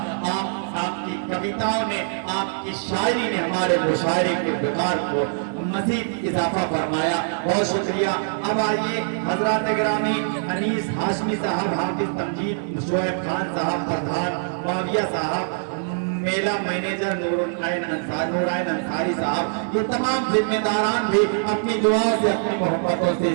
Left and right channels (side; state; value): left; silent; digital silence